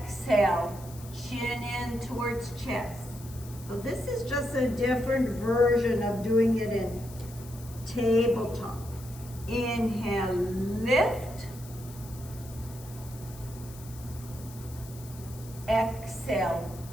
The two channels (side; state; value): left; noise; hiss, 18 dB below the sound